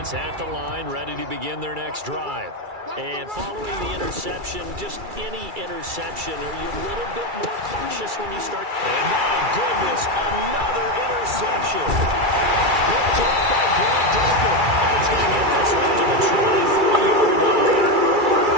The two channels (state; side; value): late; left; 2.3 ms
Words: at the line, ready to begin their next drive. And following the interception, just any interception, are you a little bit more cautious when you start? And my goodness, another interception. Picked up by Grant Delpit. And he's going to get this one to the 23-yard line.